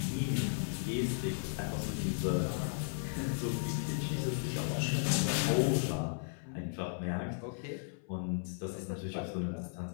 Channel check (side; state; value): right; silent; 54 dB below the other